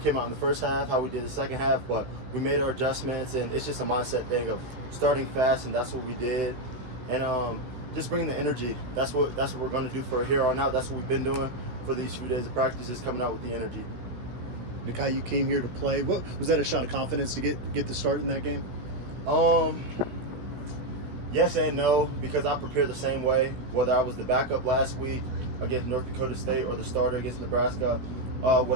out in the first half how we did the second half, but we made our adjustments, and it's just a mindset thing of starting fast, and that's what we did. And just bringing the energy. That's what we're going to do for here on out. That's what we've been doing for these few days of practice, is coming out with the energy. Nikhai, you came here to play. What was that, a shot of confidence to get the start in that game? Yes and no, because I prepare the same way, whether I was the backup last week against North Dakota State or the starter against Nebraska.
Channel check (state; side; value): late; left; 16 ms